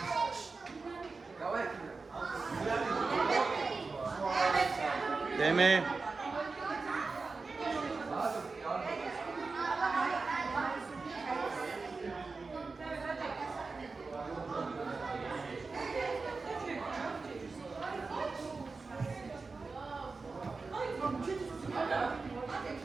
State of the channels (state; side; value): quieter; left; 4.1 dB